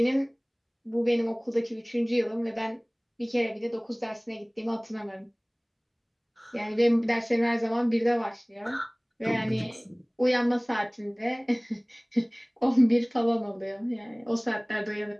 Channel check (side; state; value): both; identical; correlation 1.00